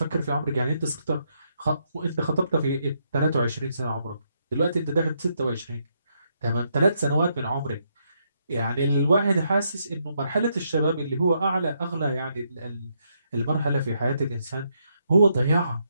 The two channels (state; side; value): inverted; both; correlation -0.77